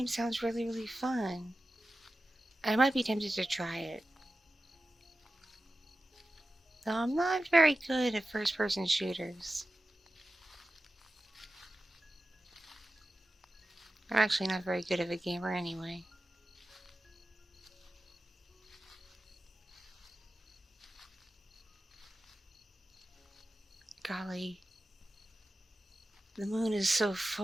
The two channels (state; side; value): normal; both; correlation 0.94